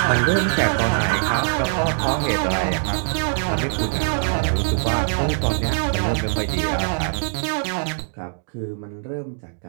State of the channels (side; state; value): left; silent; digital silence